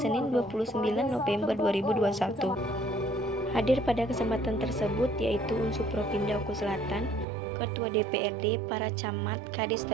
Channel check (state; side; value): drops out; left; at 7.2 s